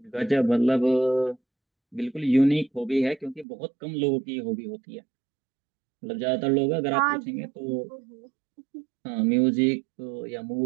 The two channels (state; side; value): drops out; left; at 3.5 s